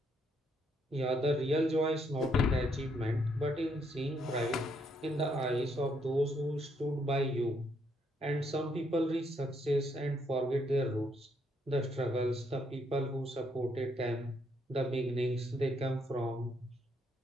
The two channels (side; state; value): both; normal; correlation 0.73